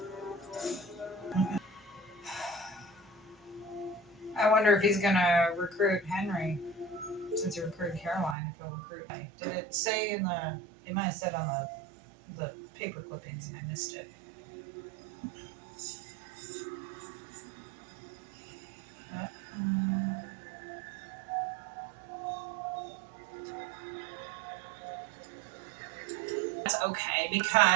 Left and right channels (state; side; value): drops out; left; at 8.3 s